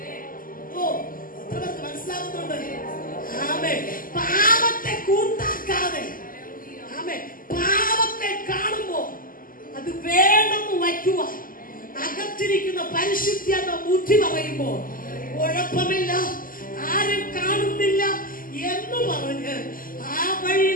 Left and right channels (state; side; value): late; right; 0.41 ms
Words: മനസ്സിലാകുന്നുണ്ട്? പാപത്തെ കൂട്ടാക്കാതെ, പാപത്തെ കാണുമ്പോ അത് വേണമെന്ന് വയ്ക്കുക. അകത്തിരിക്കുന്ന പരിശുദ്ധിയെന്ന ബുദ്ധി പറയുമ്പോ കുഴപ്പമില്ല, ആരും കാണുന്നില്ല എന്ന് പറഞ്ഞ് ആ വഴി